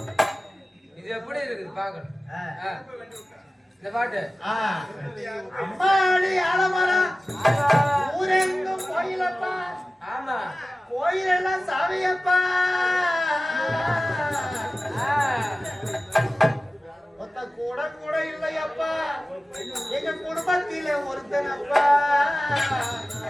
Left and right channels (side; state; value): both; normal; correlation 0.96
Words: இது எப்படி இருக்குது பாக்கணும். இந்த பாட்டு அம்மாடி ஆலமரம் ஊரெங்கும் கோயிலப்பா, ஆமா. கோயிலெல்லாம் சாமியப்பா, ஒத்த கூட கூட இல்லையப்பா, எங்க குடும்பத்தில ஒருத்தனப்பா,